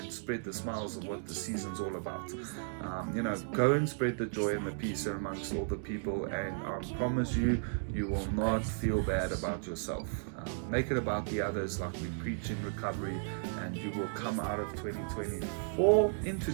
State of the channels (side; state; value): left; silent; digital silence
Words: spread the smiles of what the season's all about? You know, go and spread the joy and the peace amongst all the people, and I promise you, you will not feel bad about yourself. Make it about the others, like we preach in recovery, and you will come out of 2024 into